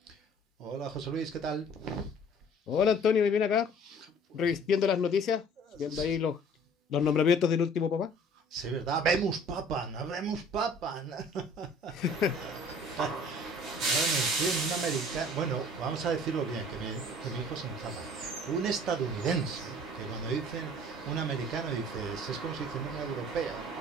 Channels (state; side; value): normal; both; correlation 0.51